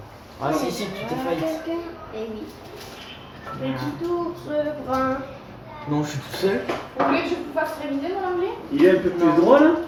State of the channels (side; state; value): both; identical; correlation 1.00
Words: Ah, si, tu t'es failli. Eh oui. Petit ours brun. Non, je suis tout seul. Vous voulez que je vous fasse réviser mon anglais? Il est un peu plus droit là?